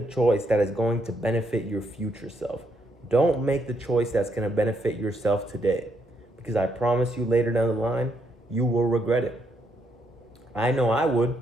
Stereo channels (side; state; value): both; normal; correlation 0.76